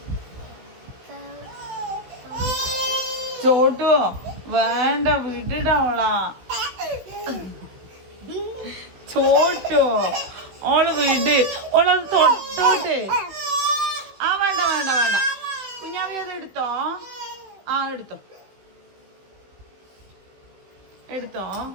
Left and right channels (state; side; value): late; left; 16 ms